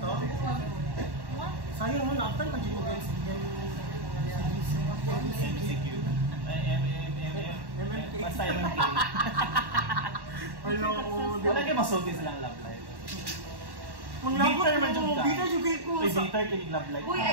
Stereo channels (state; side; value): late; left; 1.1 ms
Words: Sayang mo na, after pag mo guys, CQ. Basta MMK. Wala kayo masulti silang love life. Bitter man dyan ka. Bitter yung gay ko. Bitter kinig love life. Uy,